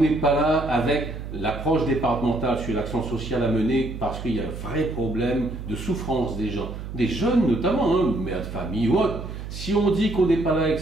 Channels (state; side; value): noise; right; hum, 9 dB below the sound